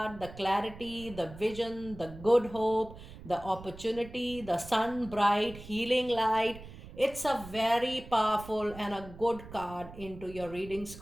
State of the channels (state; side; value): noise; right; rumble, 16 dB below the sound